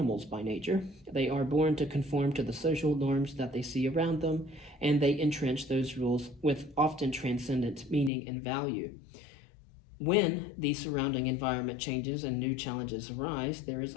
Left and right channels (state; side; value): drops out; right; at 8.1 s